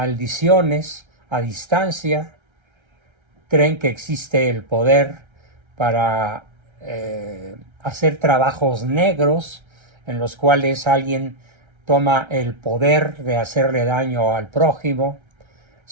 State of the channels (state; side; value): late; left; 1.3 ms